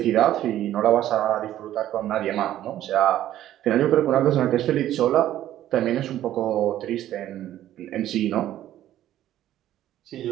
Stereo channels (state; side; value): quieter; left; 12.7 dB